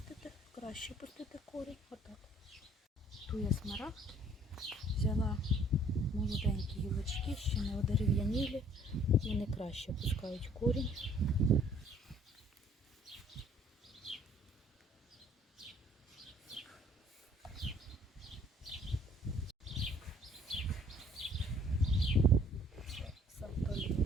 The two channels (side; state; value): both; normal; correlation 0.58